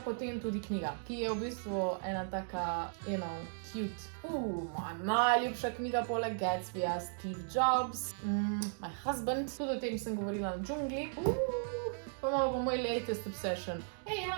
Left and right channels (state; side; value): silent; left; digital silence